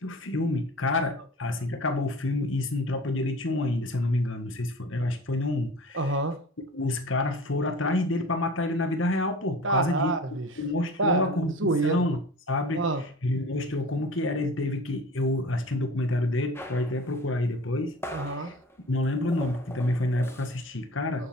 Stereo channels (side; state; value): both; normal; correlation 0.40